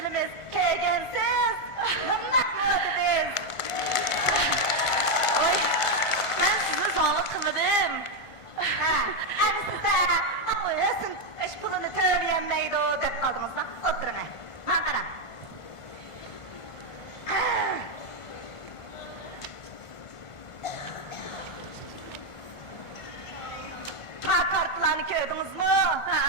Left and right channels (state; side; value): late; right; 1.5 ms